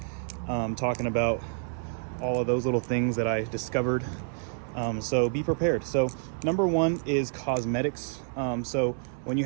talking about all of those little things that I discovered. So be prepared. So number 1 is cosmetics. So when you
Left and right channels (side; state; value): left; silent; 59 dB below the other